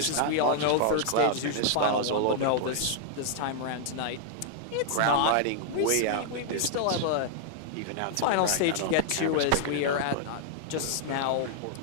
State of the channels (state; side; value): different; both; correlation -0.01